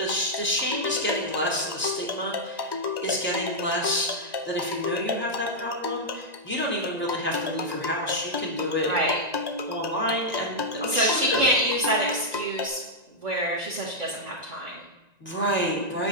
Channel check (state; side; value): late; left; 1.9 ms